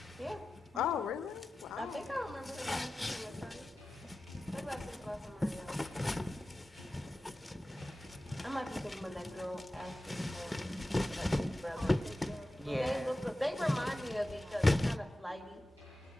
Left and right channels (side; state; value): both; normal; correlation 0.94